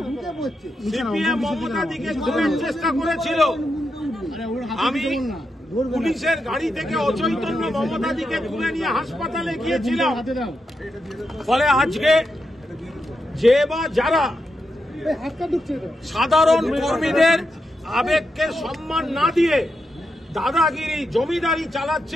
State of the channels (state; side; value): normal; both; correlation 0.85